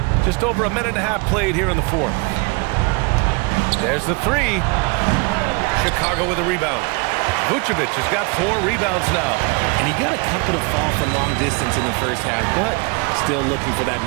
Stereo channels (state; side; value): quieter; left; 29.5 dB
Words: Just over a minute and a half played here in the 4th. There's the 3. Chicago with a rebound. Vucevic has got 4 rebounds now. And he got a couple to fall from long distance in the first half, but still looking for that